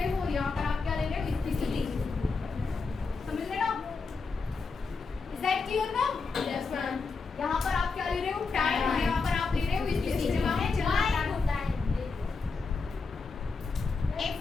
हो और यहाँ पर आप क्या ले रहे हो? स्थिति। समझ रहे ना? इज दैट क्लियर ना? Yes ma'am. यहाँ पर आप क्या ले रहे हो? टाइम, और यहाँ पर आप ले रहे हो स्थिति। जब आपने चलना x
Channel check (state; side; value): quieter; right; 4.5 dB